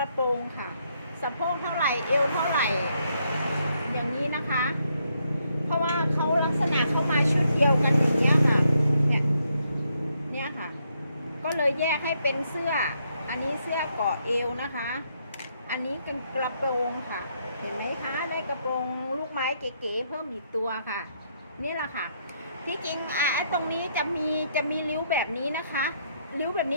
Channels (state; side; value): inverted; both; correlation -0.75